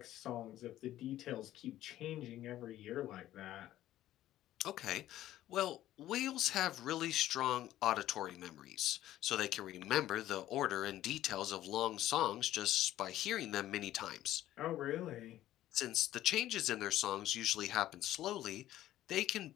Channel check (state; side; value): quieter; right; 13.7 dB